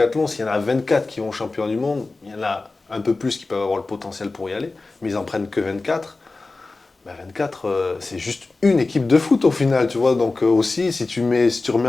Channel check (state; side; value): quieter; right; 3.5 dB